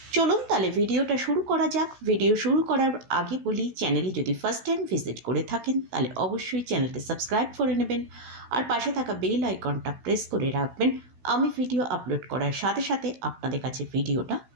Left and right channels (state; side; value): late; left; 16 ms